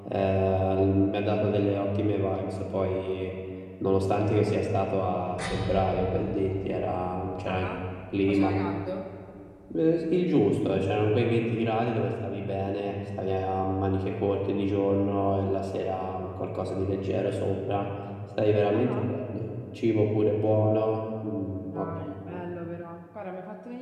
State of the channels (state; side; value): identical; both; correlation 1.00